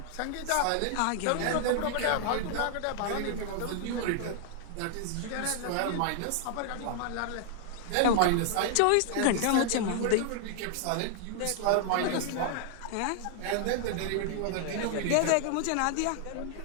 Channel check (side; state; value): both; different; correlation 0.00